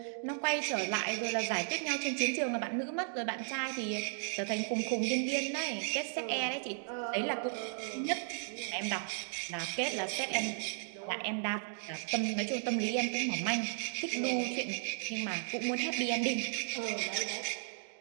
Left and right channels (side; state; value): left; silent; digital silence